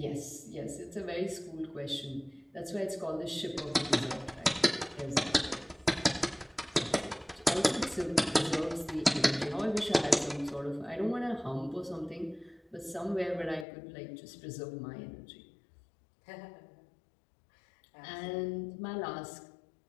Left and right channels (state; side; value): drops out; right; at 13.7 s